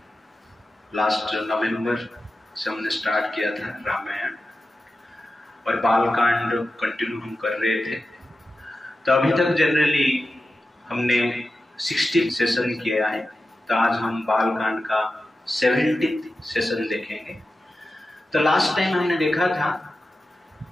लास्ट नवंबर से हमने स्टार्ट किया था रामायण, और बालकांड कंटिन्यू हम कर रहे थे। तो अभी तक जनरली हमने 60 सेशन किया है, तो आज हम बालकांड का 70 सेशन देखेंगे। तो लास्ट टाइम हमने देखा था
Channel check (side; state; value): both; normal; correlation 0.92